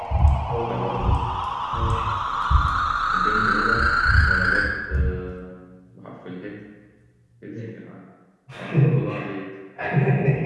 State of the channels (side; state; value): both; identical; correlation 1.00